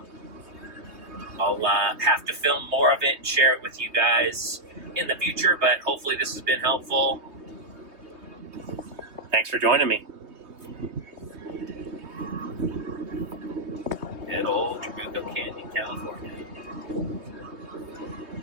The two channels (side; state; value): left; late; 3.2 ms